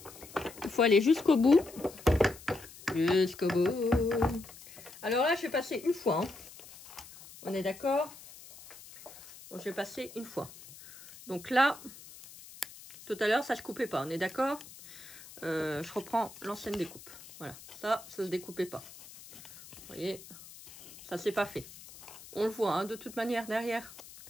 il faut aller jusqu'au bout. Jusqu'au bout. Alors là, je vais passer une fois. Hein. On est d'accord? Donc, je vais passer une fois. Donc là, tout à l'heure, ça ne se coupait pas. On est d'accord? Je reprends l'ancienne découpe. Voilà. Ça ne se découpait pas. Vous voyez? Ça, c'est pas fait. on le voit hein, de toute manière derrière.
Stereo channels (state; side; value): noise; left; hiss, 18 dB below the sound